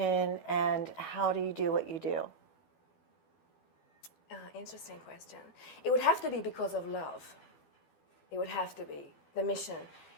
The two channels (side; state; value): right; late; 12 ms